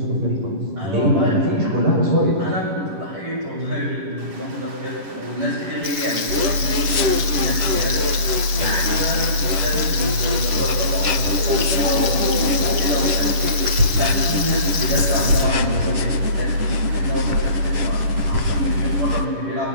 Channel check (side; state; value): left; late; 11 ms